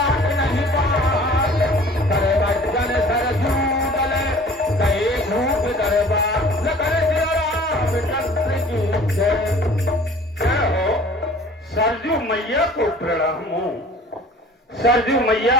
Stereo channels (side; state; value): both; normal; correlation 0.48